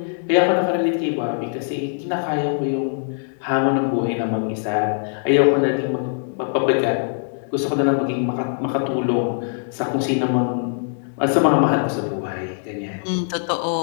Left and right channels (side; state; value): right; silent; digital silence